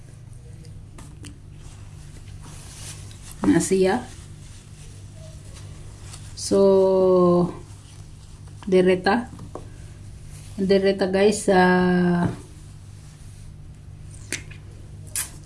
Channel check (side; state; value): both; identical; correlation 1.00